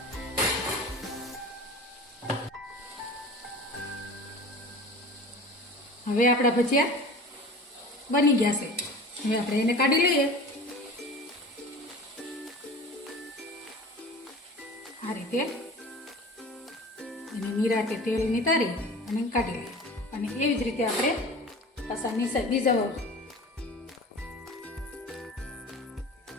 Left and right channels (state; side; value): normal; both; correlation 0.38